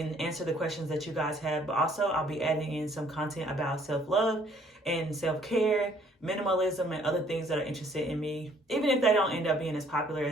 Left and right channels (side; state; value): both; normal; correlation 0.61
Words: answer the questions that you guys have. But also I'll be adding in some content about self-love and self-care, minimalism, and other things that are interested in me. Even if they don't end up being as popular